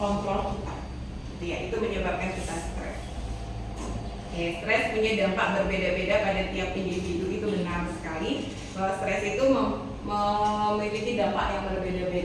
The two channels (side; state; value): both; identical; correlation 1.00